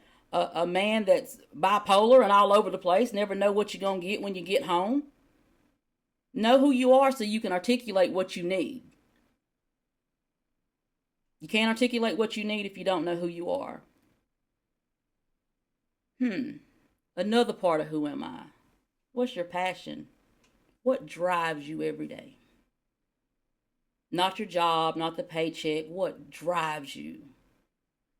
a man that's bipolar and all over the place, never know what you're going to get when you get home. Know who you are so you can articulate what you need. You can't articulate what you need if you don't know who you are. Another part of who am I? What's your passion? What drives you every day? Not your job, not the paycheck. What drives you?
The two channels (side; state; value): both; identical; correlation 1.00